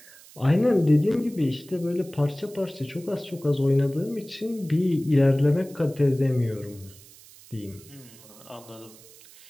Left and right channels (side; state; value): right; noise; hiss, 22 dB below the sound